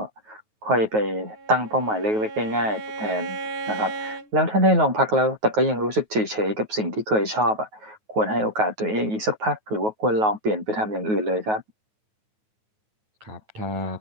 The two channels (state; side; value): late; left; 9.3 ms